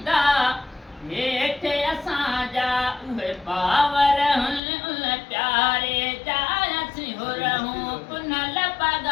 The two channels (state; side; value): drops out; right; at 4.6 s